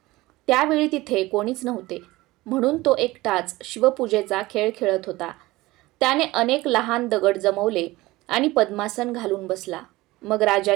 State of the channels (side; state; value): left; quieter; 19.4 dB